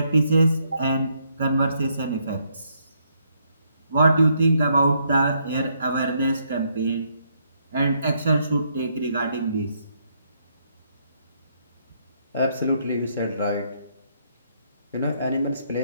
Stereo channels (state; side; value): inverted; both; correlation -0.73